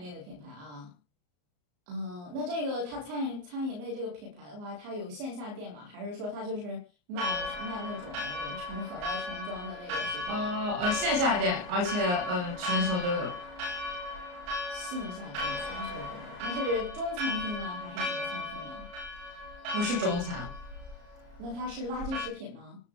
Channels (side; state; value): left; late; 34 ms